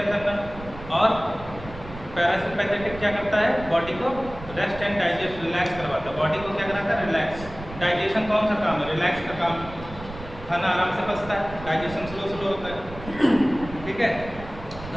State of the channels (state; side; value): noise; right; rumble, 14 dB below the sound